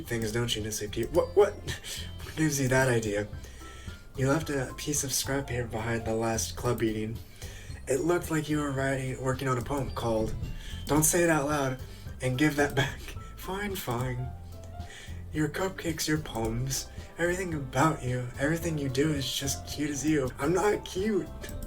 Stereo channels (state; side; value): identical; both; correlation 1.00